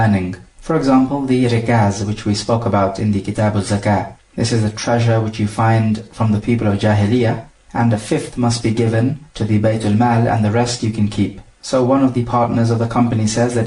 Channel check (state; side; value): identical; both; correlation 1.00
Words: For example, the rikaz, which we spoke about in the Kitab al-Zakah. This is a treasure which you find from the people of Jahiliyyah, and a fifth must be given to the Baytul Mal and the rest you can keep. So one of the partners of the company says that